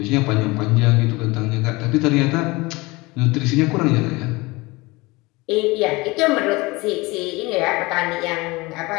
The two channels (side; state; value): right; quieter; 23.2 dB